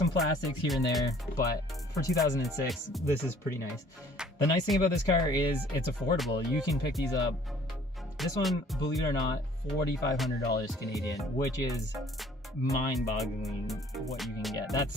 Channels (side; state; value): both; normal; correlation 0.56